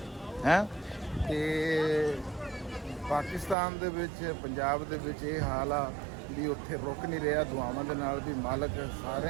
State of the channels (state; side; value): drops out; left; at 3.6 s